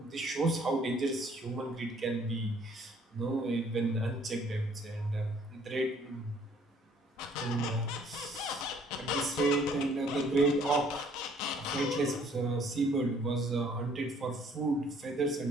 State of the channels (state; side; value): normal; both; correlation 0.60